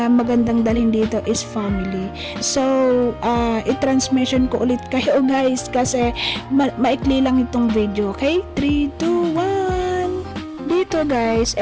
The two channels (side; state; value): both; identical; correlation 1.00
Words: magandang dalhin dito is family. So, i-transmission ko ulit kayo guys kasi maikli lang itong video. Okay? 3, 2, 1. Dito guys,